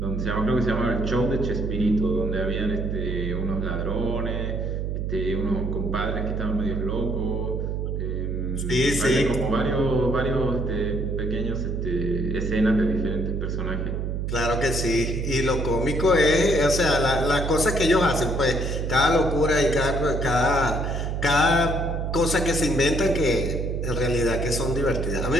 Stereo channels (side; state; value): right; noise; hum, 2 dB below the sound